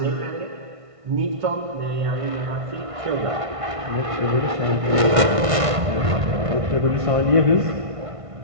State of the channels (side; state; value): left; late; 1.5 ms